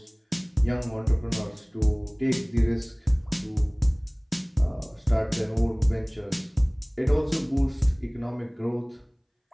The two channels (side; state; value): both; identical; correlation 1.00